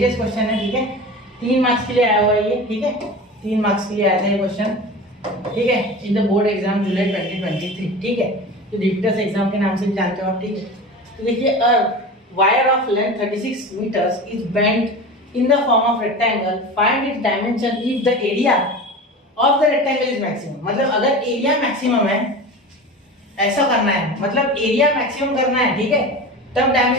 क्वेश्चन है। ठीक है, 3 मार्क्स के लिए आया हुआ है ये। ठीक है, 3 मार्क्स के लिए आया था ये क्वेश्चन। ठीक है, इन द बोर्ड एग्जाम जुलाई 2023। ठीक है, तो रिपीटर्स एग्जाम के नाम से भी जानते हो आप। ठीक है, तो देखिए, a wire of length 36 metres is bent in the form of rectangle, find its dimension if the area of the rectangle is maximum. मतलब अगर एरिया मैक्सिमम है, ऐसा करना है, मतलब एरिया मैक्सिमम करना है। ठीक है, तब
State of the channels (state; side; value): normal; both; correlation 0.32